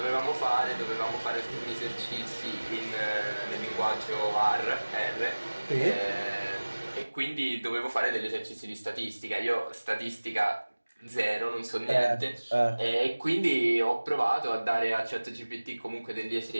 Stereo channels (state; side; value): inverted; both; correlation -1.00